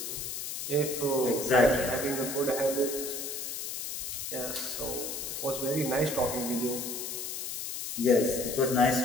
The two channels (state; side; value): noise; left; hiss, 5 dB below the sound